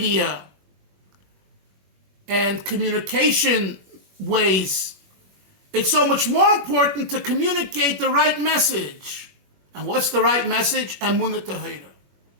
and communication ways. It's so much more important to communicate the right message. And what's the right message? Emunah tahira.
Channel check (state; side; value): late; left; 21 ms